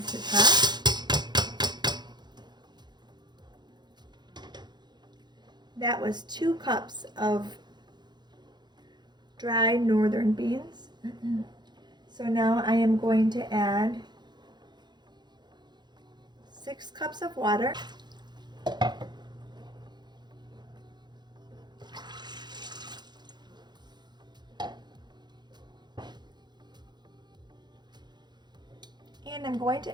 Pot. That was 2 cups of dried northern beans. So now I am going to add 6 cups of water. And I'm going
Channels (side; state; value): left; late; 0.21 ms